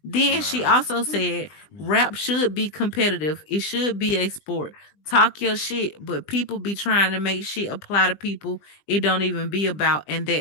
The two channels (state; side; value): late; right; 20 ms